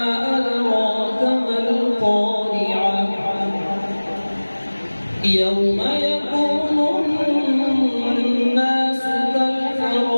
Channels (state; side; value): inverted; both; correlation -1.00